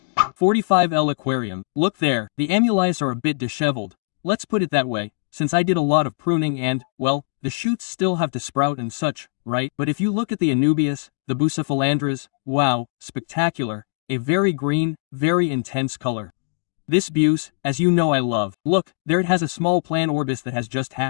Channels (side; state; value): right; silent; digital silence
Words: 45L aquarium, look there, the amulets are a bit disheveled. Let's put it that way, since I did a lot of pruning and, well, the shoots still have to sprout and such, right? But if you look at the Anubias, the Bucephalandras, wow, spectacular, a very green, very intense color. This buse, as you know I love. Look, there it has a small plan orbis that has just